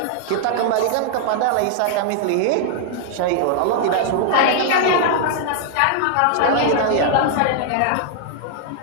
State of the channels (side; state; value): both; different; correlation -0.01